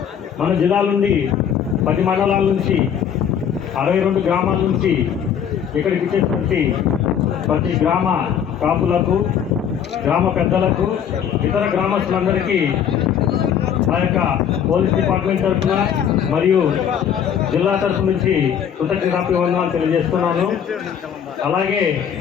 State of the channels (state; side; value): quieter; right; 8.5 dB